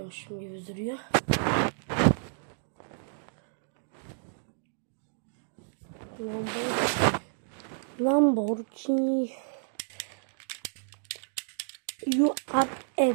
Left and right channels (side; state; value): left; silent; digital silence